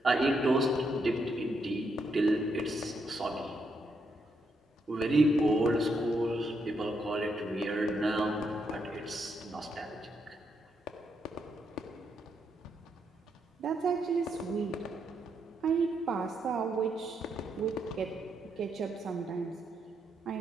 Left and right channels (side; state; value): both; normal; correlation 0.79